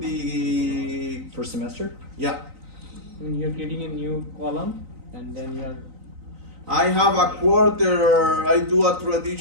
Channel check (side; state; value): left; late; 3.9 ms